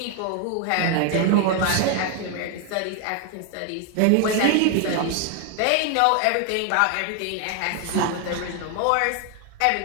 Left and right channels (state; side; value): different; both; correlation 0.00